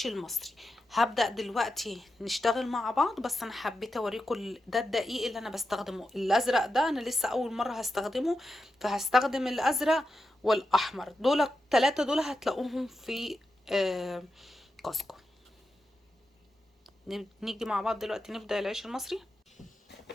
المصري. هبدأ دلوقتي نشتغل مع بعض، بس انا حبيت اوريكم ده الدقيق اللي انا بستخدمه. الازرق ده انا لسه اول مرة هستخدمه، فهستخدم الازرق والاحمر. دول التلاتة دول هتلاقوهم في كاسكو. نيجي مع بعض دلوقتي نبدأ العيش المصري.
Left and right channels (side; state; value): both; normal; correlation 0.89